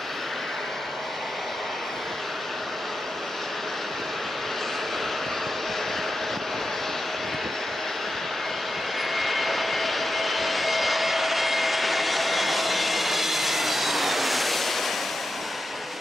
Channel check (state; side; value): normal; both; correlation 0.89